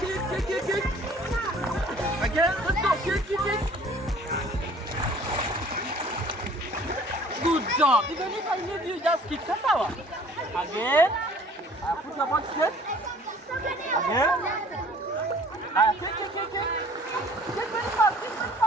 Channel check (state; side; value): normal; both; correlation 0.52